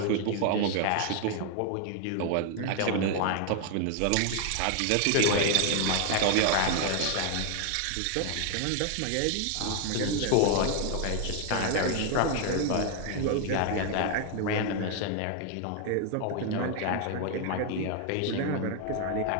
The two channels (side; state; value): both; different; correlation 0.00